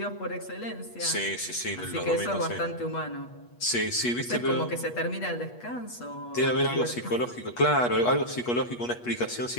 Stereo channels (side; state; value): right; late; 8.3 ms